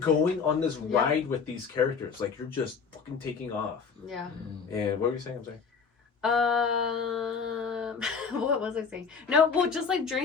on this ride with these characters. Like, you're just fucking taking off. Yeah. And what were you saying? I'm sorry. What was I saying? No, well, just like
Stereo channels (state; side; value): quieter; right; 5.8 dB